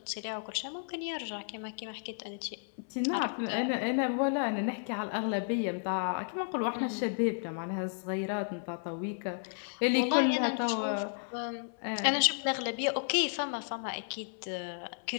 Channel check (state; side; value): silent; right; 56 dB below the other